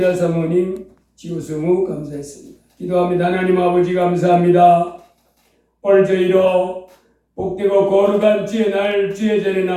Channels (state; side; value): identical; both; correlation 1.00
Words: 사모님 지우승우 감사했습니다. 기도합니다. 하나님 아버지 감사합니다. 오늘 저희로 복되고 거룩한 주의 날 주의 전에